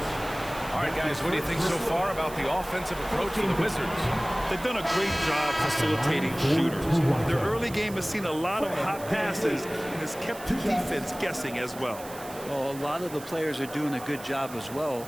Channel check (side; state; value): right; noise; hiss, 16 dB below the sound